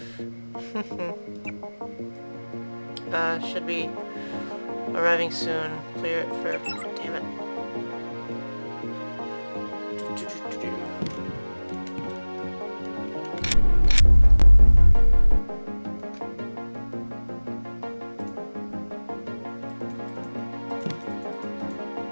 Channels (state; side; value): inverted; both; correlation -1.00